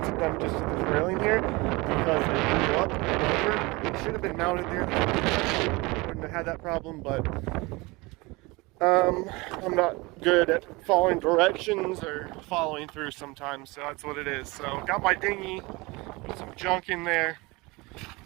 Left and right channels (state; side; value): quieter; left; 24.2 dB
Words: them just to the railing here because they blew up and over. They should have been mounted there. Wouldn't have had that problem, but I'm not good at following directions or following through sometimes, so that's what it is. So got my dinghy, some junk in there,